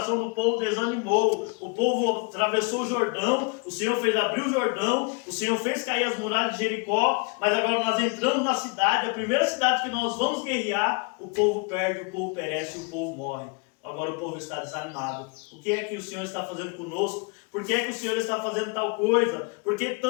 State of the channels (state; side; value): quieter; right; 32.2 dB